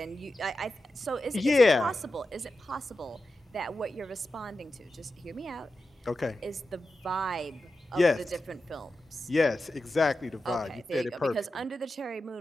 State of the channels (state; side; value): normal; both; correlation 0.91